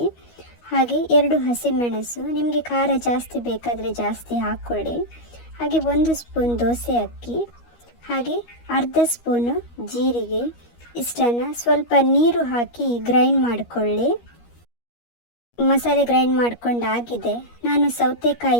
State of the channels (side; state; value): right; late; 13 ms